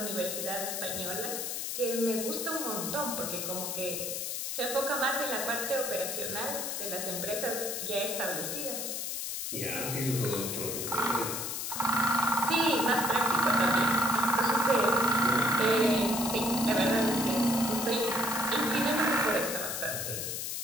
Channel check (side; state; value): left; noise; hiss, 3 dB below the sound